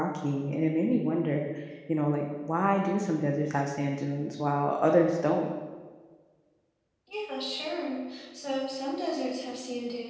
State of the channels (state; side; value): identical; both; correlation 1.00